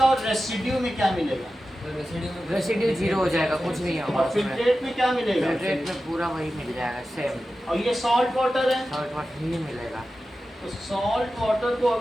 और रेसिड्यू में क्या मिलेगा? रेसिड्यू 0 हो जाएगा, कुछ नहीं होगा और उसमें। फिल्ट्रेट में क्या मिलेगा? फिल्ट्रेट में पूरा वही मिल जाएगा, सेम और ये सॉल्ट वाटर है। सॉल्ट वाटर ही मिलेगा। तो सॉल्ट वाटर को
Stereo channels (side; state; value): both; normal; correlation 0.93